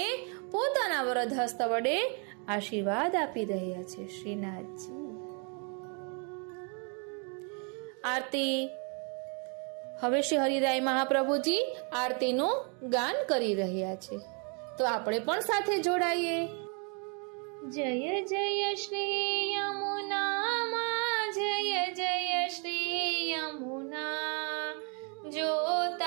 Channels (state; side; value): quieter; left; 37.4 dB